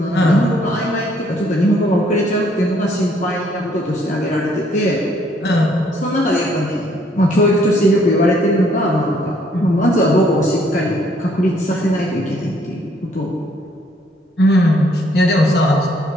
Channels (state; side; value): normal; both; correlation 0.66